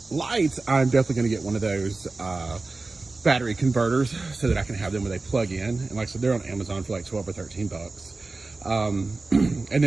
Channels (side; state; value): left; quieter; 3.5 dB